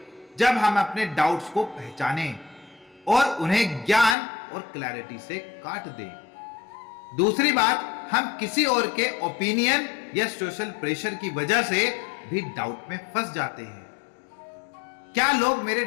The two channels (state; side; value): drops out; right; at 4.2 s